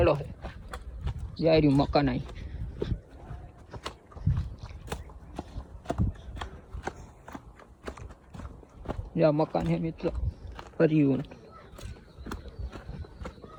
છે જાય મકાન અહીં જ્યાં મકાન છે મિત્રો ફર્યું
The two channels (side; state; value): both; identical; correlation 1.00